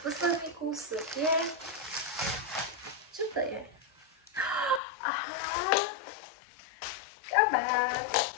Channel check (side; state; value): right; drops out; at 4.8 s